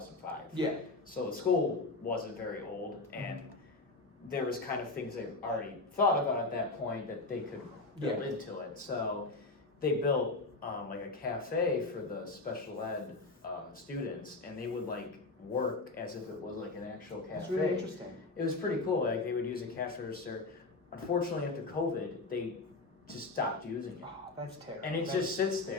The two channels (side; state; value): right; quieter; 3.4 dB